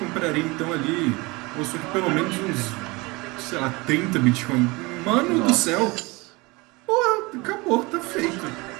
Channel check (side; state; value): left; quieter; 24.5 dB